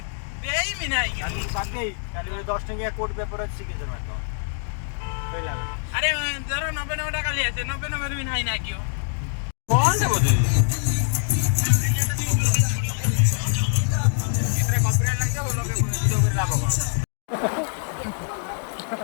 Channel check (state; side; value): silent; right; digital silence